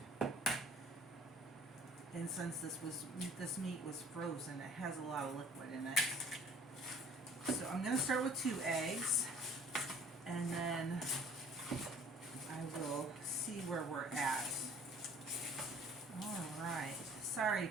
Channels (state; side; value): normal; both; correlation 0.51